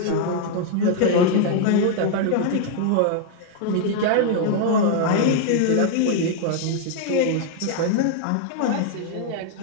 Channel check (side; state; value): both; different; correlation 0.00